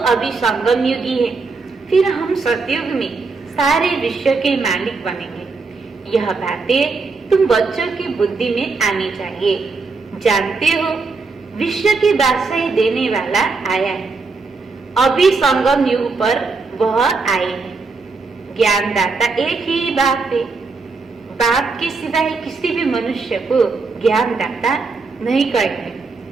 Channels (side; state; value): left; quieter; 4.2 dB